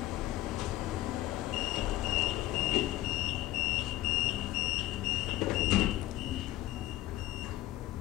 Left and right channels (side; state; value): right; quieter; 15.4 dB